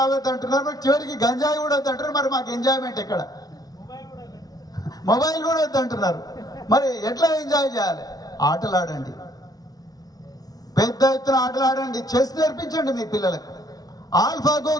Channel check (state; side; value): late; right; 0.18 ms